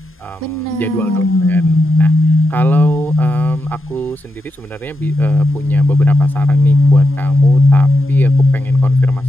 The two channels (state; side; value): normal; both; correlation 0.86